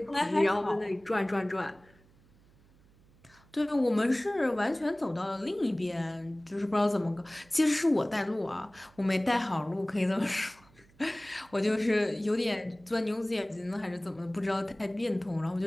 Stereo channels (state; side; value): noise; right; hum, 29 dB below the sound